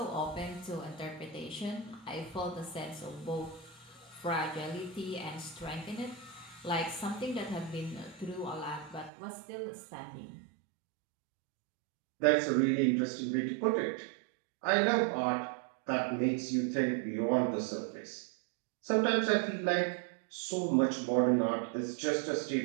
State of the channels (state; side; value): drops out; left; at 9.1 s